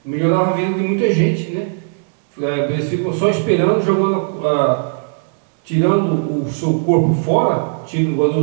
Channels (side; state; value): left; silent; digital silence